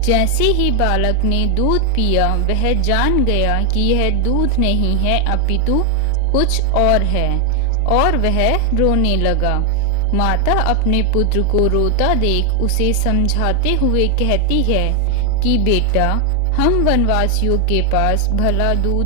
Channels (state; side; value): different; both; correlation 0.00